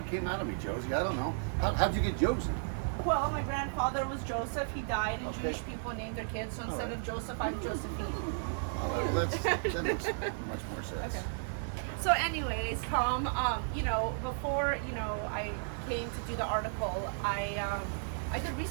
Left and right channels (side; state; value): left; silent; digital silence